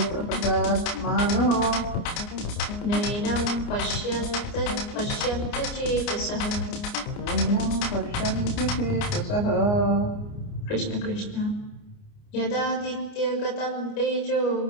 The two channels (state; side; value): late; right; 29 ms